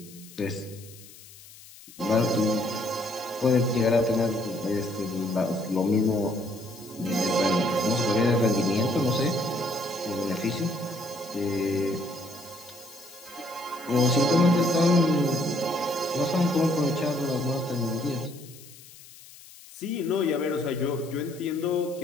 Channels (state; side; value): noise; left; hiss, 20 dB below the sound